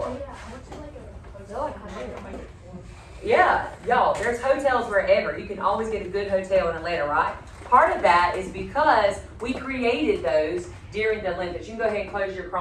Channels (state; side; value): identical; both; correlation 1.00